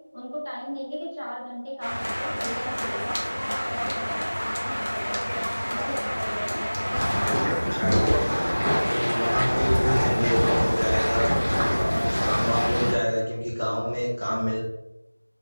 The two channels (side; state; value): both; inverted; correlation -1.00